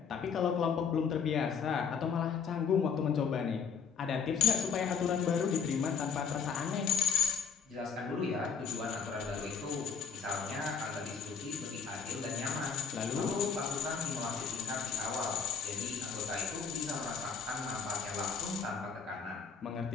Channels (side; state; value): right; quieter; 6.4 dB